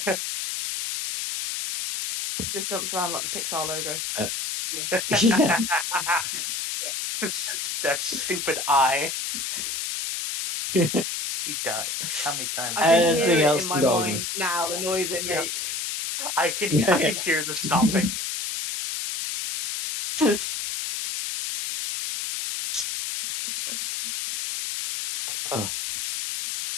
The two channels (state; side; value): noise; left; hiss, 3 dB below the sound